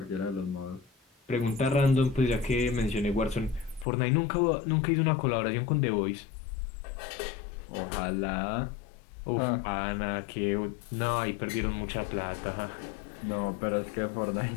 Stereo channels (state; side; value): drops out; right; at 3.9 s